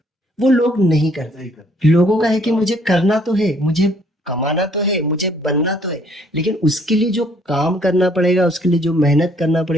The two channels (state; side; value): normal; both; correlation 0.63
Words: वो लोग नहीं करते। नहीं कर लोगों का है कि मुझे करना तो है, मुझे कमाना तो है, मुझे बनना तो है, लेकिन उसके लिए जो काम करना पड़ेगा, उसके लिए जो मेहनत करना